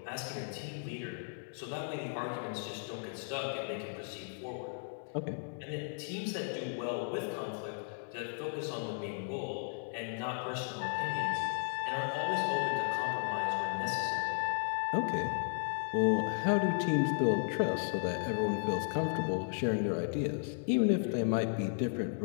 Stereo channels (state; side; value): silent; right; digital silence